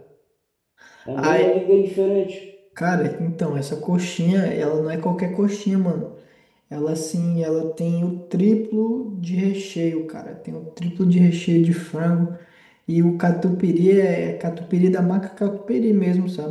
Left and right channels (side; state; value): both; identical; correlation 1.00